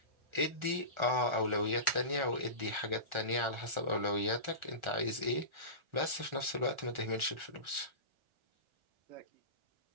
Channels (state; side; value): late; left; 1.4 ms